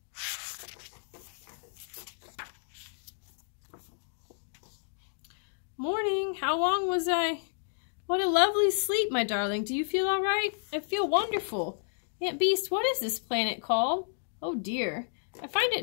Morning. How long was I? What a lovely sleep, my darling. Do you feel all right? I feel wonderful. Aunt Beast, what is this planet called? Oh dear. I find it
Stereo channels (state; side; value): silent; right; digital silence